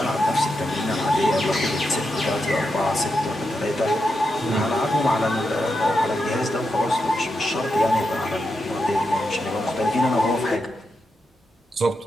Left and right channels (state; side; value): normal; both; correlation 0.86